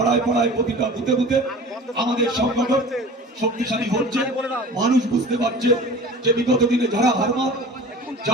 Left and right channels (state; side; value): normal; both; correlation 0.40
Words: পাড়ায় প্রতিটা বুথে বুথে আমাদের সংগঠন শক্তিশালী হচ্ছে। মানুষ বুঝতে পারছে যে বিগত দিনে যারা হারমাত,